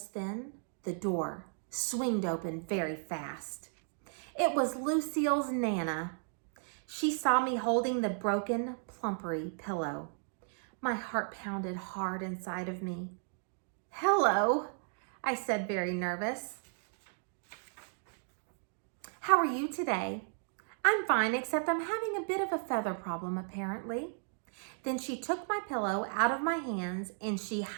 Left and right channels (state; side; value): silent; left; 55 dB below the other